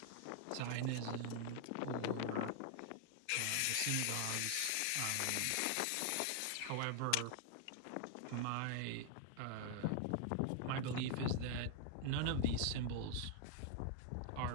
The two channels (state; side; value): different; both; correlation 0.00